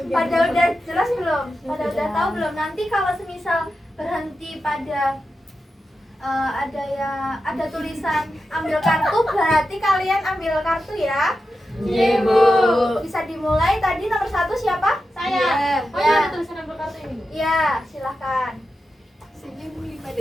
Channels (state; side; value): normal; both; correlation 0.90